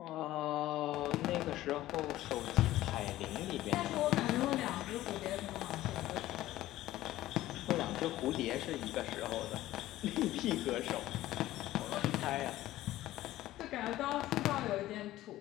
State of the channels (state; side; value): quieter; right; 15.3 dB